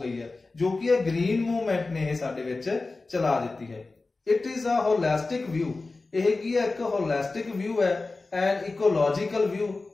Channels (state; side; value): quieter; right; 3.6 dB